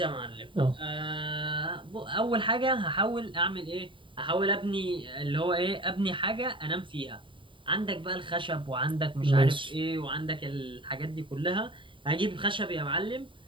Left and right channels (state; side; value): late; left; 0.24 ms